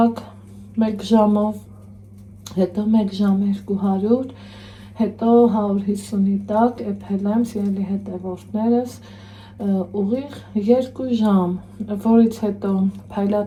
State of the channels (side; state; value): both; identical; correlation 1.00